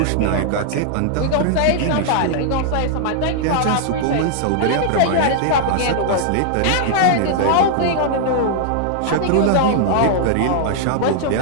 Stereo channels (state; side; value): different; both; correlation -0.01